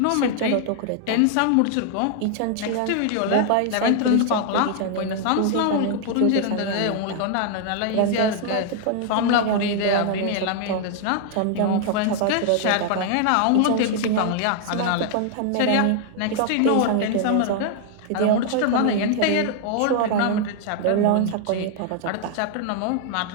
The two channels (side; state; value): both; different; correlation 0.00